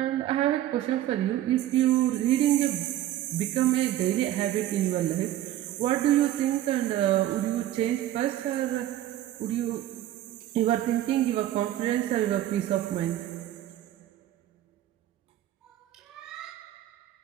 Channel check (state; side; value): quieter; left; 13.2 dB